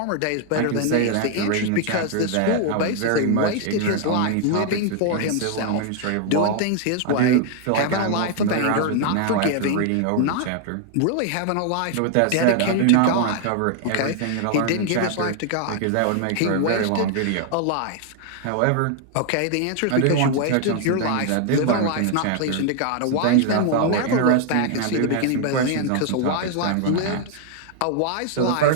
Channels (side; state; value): both; different; correlation 0.00